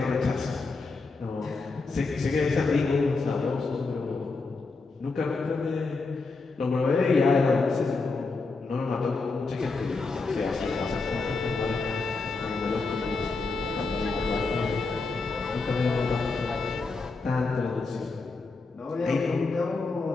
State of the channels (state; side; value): quieter; right; 3.9 dB